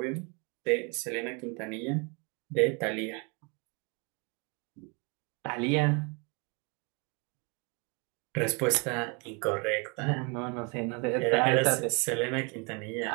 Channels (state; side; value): quieter; left; 32.8 dB